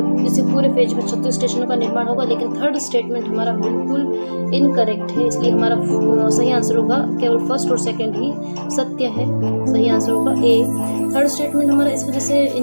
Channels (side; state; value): both; inverted; correlation -1.00